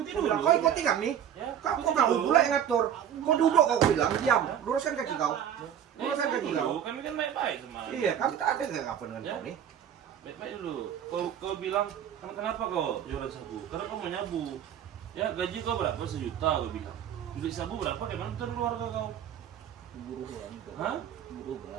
Kau bilang, dulu. kau ikuti kami. Ya, Kau ikuti kamu dulu. pula yang ngatur. Kau duduk kau bilang, diam. Luruskan kaki kau. Luruskan kaki dulu. kau. Kami kan baik-baik sama. Iya, kami tak ada yang apa dengan Ya. kau nih. Baik-baik dulu. Kau bilang, kenapa kau jualan sabu? Karena kau mau nyabu. Ya, gaji kau berapa? 1 juta kau bilang. Beli sabu berapa? Kayak mana tuh keluarga kau? Buru bang. Hah? Buru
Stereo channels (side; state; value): left; quieter; 9.5 dB